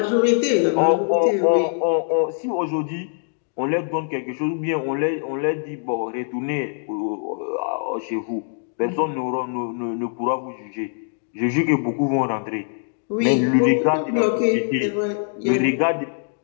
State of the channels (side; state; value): right; silent; digital silence